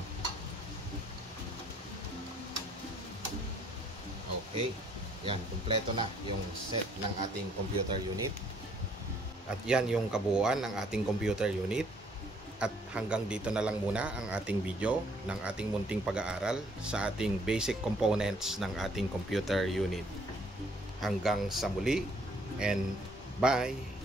Okay. Yan, kumpleto na yung set ng ating computer unit. At yan yung kabuuan ng ating computer unit. At hanggang dito na lang muna ang ating video ng ating munting pag-aaral sa ating basic components ng ating computer unit. Hanggang sa muli, and bye!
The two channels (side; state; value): both; normal; correlation 0.63